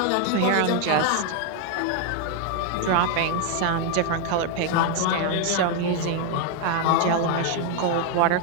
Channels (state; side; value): different; both; correlation 0.01